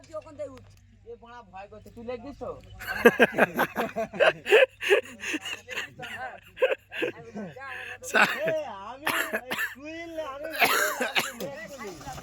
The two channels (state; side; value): identical; both; correlation 1.00